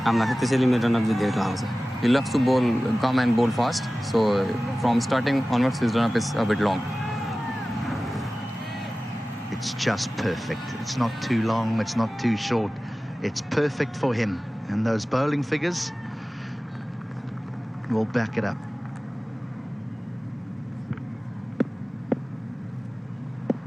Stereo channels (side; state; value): both; normal; correlation 0.97